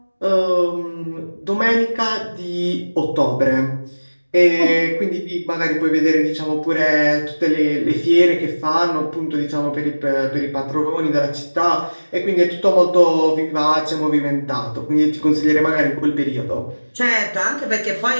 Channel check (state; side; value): inverted; both; correlation -1.00